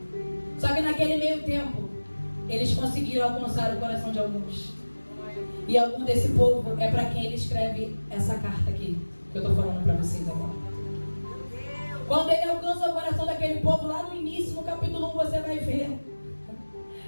Só que naquele meio tempo eles conseguiram alcançar o coração de alguns. E algum desse povo é para quem ele escreve essa carta aqui, que eu estou falando para vocês agora. Quando ele alcança o coração daquele povo, lá no início, no capítulo 1, você vai ver.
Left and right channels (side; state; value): both; inverted; correlation -1.00